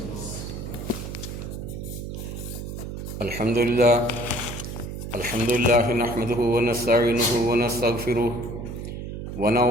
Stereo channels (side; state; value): right; noise; hum, 7 dB below the sound